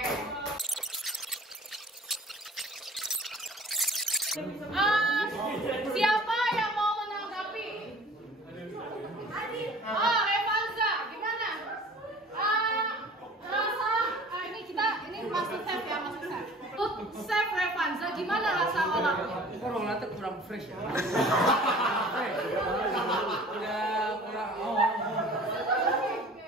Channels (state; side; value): normal; both; correlation 0.47